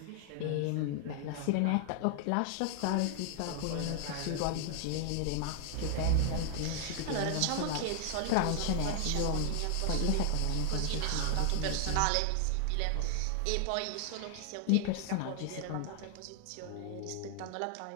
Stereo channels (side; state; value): both; different; correlation 0.00